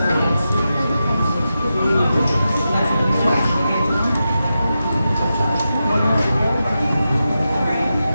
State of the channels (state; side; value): inverted; both; correlation -0.90